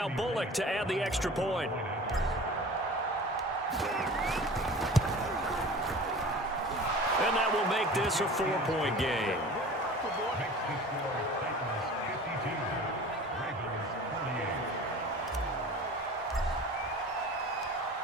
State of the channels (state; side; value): normal; both; correlation 0.40